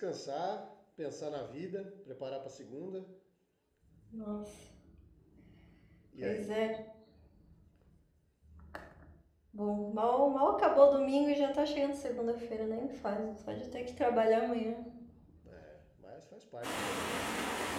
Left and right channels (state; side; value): identical; both; correlation 1.00